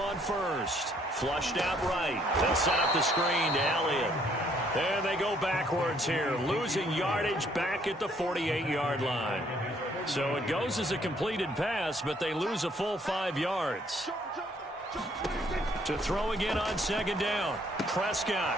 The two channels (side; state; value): both; normal; correlation 0.65